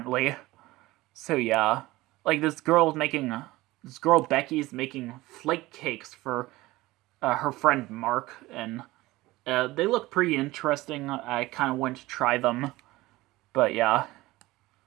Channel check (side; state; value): left; quieter; 19.0 dB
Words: So yeah, like this girl Becky's making flake cakes for her friend Mark, and they look pretty interesting. I kind of went to try them, but yeah.